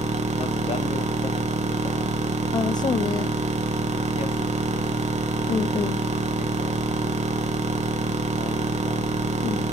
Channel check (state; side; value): normal; both; correlation 0.63